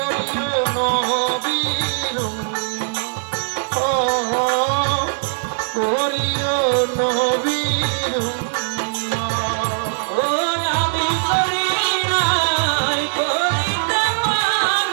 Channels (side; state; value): left; silent; 59 dB below the other